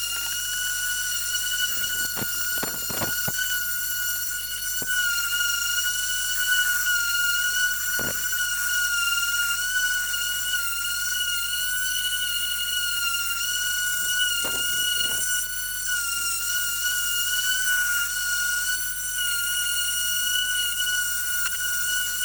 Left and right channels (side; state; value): left; noise; hum, 20 dB below the sound